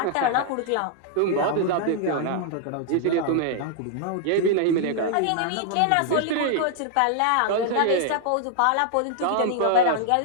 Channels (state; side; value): different; both; correlation -0.01